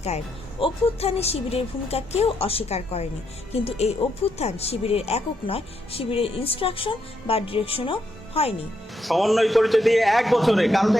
কায়েম। অভ্যুত্থানে শিবিরের ভূমিকা কেউ অস্বীকার করেনি, কিন্তু এই অভ্যুত্থান শিবিরের একক নয়, শিবিরের ইনস্ট্রাকশন বা ডিরেকশনও হয়নি। সমন্বয় পরিচয় দিয়ে 1 বছরে কারণ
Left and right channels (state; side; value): normal; both; correlation 0.78